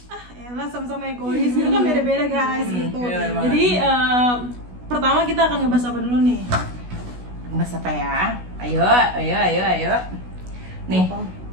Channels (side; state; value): left; late; 16 ms